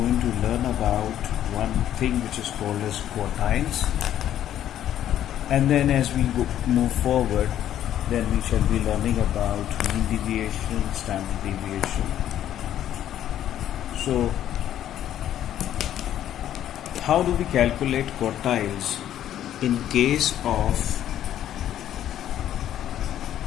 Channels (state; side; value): quieter; right; 11.3 dB